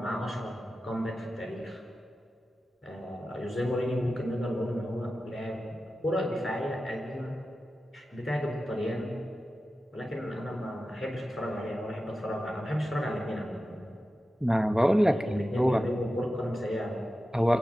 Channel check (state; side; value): normal; both; correlation 0.93